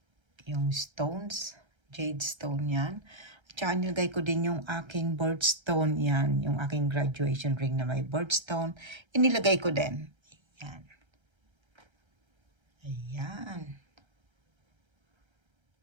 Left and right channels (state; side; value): late; left; 1.3 ms